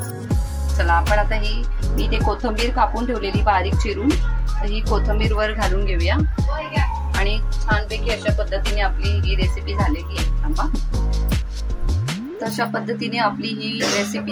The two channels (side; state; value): both; identical; correlation 1.00